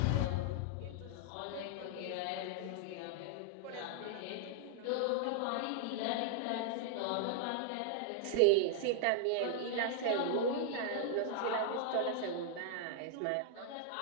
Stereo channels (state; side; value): different; both; correlation -0.01